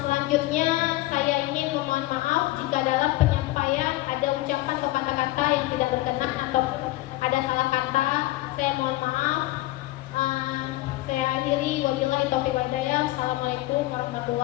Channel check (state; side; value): quieter; right; 18.1 dB